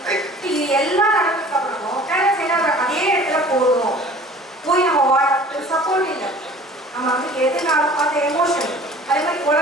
இது எல்லாம் நடந்ததுக்கு அப்புறமும் அதே இடத்துல போகணும் போய் நம்ம சப்போர்ட் இல்லை. நம்ம வந்து எதுனாலும் அந்த எமோஷன், அதே மாதிரி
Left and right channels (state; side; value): normal; both; correlation 0.46